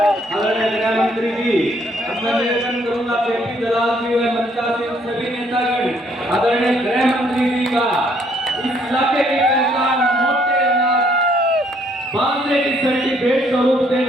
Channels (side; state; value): both; normal; correlation 0.67